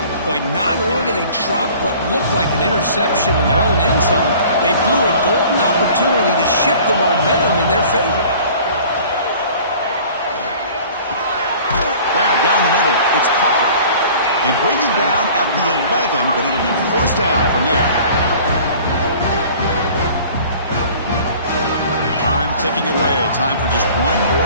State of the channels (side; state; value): both; inverted; correlation -0.47